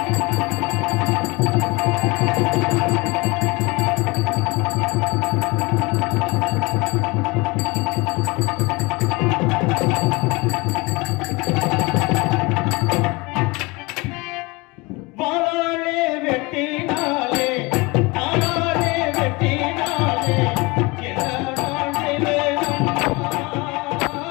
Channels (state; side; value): quieter; right; 25.0 dB